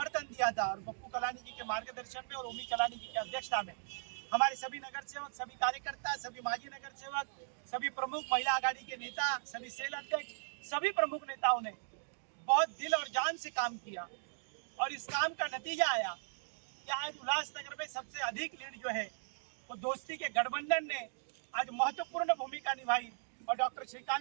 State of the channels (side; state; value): left; silent; digital silence